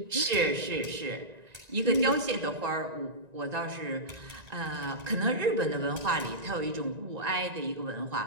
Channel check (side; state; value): left; late; 1.9 ms